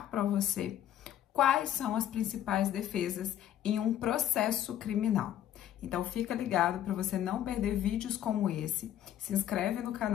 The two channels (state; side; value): quieter; right; 11.2 dB